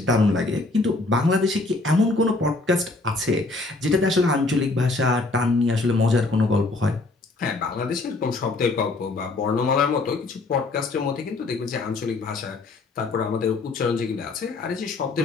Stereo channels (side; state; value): right; quieter; 3.3 dB